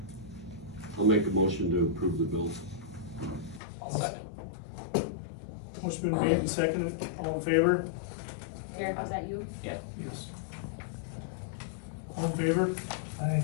I'll make a motion to approve the bills. Motion been made and seconded, all in favor? Eric, is that you? Yeah. Yes. All in favor? Aye.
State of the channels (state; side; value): drops out; right; at 3.6 s